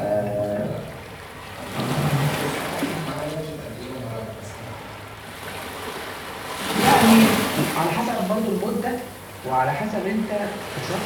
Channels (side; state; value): both; identical; correlation 1.00